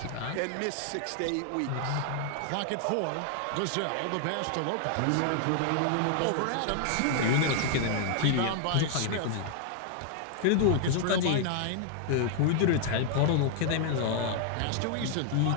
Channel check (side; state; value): both; different; correlation 0.00